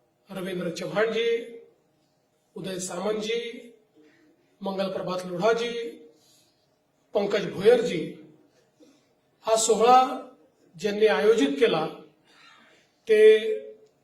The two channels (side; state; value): both; identical; correlation 1.00